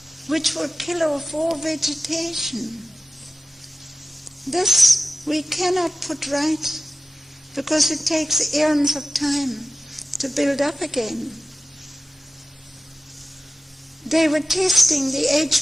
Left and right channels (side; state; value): both; normal; correlation 0.95